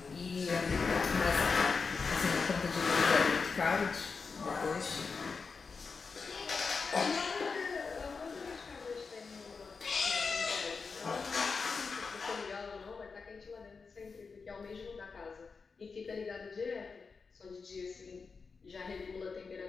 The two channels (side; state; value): right; quieter; 4.9 dB